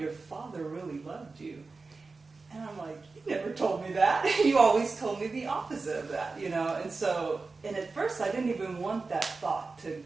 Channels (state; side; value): quieter; left; 4.0 dB